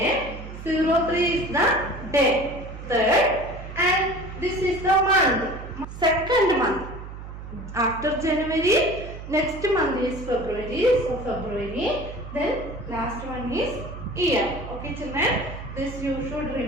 03 is the day, third, and this is the month, second month. After January, next month is February. So February. Then last one is year. Okay, children. This you should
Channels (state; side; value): noise; right; hum, 11 dB below the sound